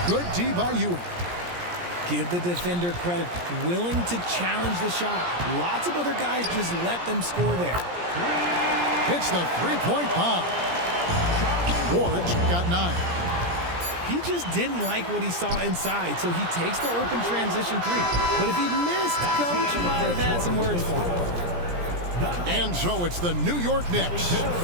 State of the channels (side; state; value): left; late; 17 ms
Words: Good D by Ewing. Give the defender credit. Willing to challenge the shot. Lots of other guys just let them score there. Hits the three-point bomb. Ward's got 9. He just didn't like what he saw inside, so he takes the open transition three. But if he missed, Coach might have had some words for him. And so it's the New York Knicks